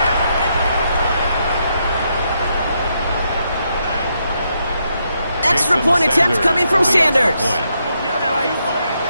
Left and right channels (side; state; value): both; inverted; correlation -0.79